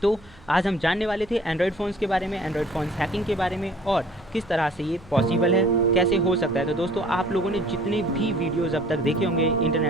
तो आज हम जानने वाले थे एंड्रॉयड फ़ोन्स के बारे में, एंड्रॉयड फ़ोन्स हैकिंग के बारे में और किस तरह से ये पॉसिबल है, कैसे हो सकता है। तो दोस्तों आप लोगों ने जितने भी वीडियोस अब तक देखे होंगे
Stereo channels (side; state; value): right; noise; hum, 26 dB below the sound